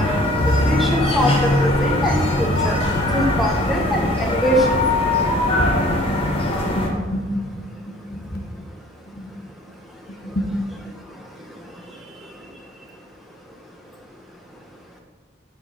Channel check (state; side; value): normal; both; correlation 0.53